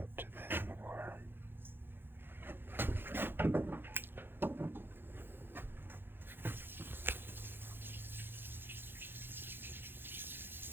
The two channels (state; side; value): late; left; 0.10 ms